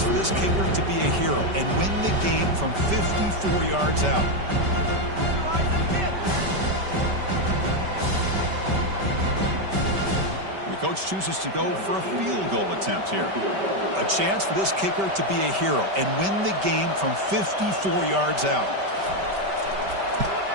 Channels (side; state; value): left; late; 5.2 ms